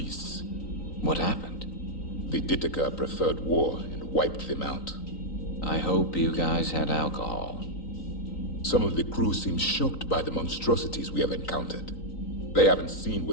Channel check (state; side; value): late; right; 3.9 ms